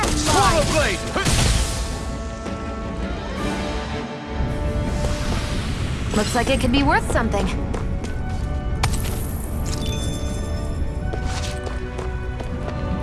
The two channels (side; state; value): both; identical; correlation 1.00